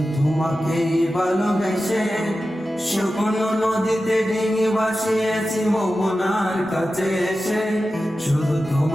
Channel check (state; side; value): normal; both; correlation 0.93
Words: তোমাকে ভালোবেসে শুকনো নদীতে ডিঙি ভাসিয়েছি মোহনার কাছে এসে। শুধু